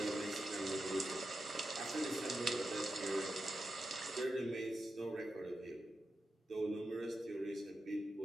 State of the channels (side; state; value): both; normal; correlation 0.89